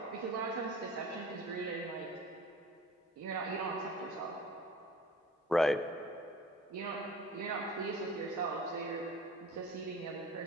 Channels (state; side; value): normal; both; correlation 0.42